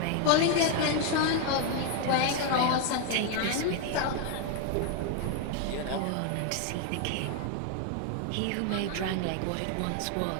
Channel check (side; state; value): both; different; correlation 0.01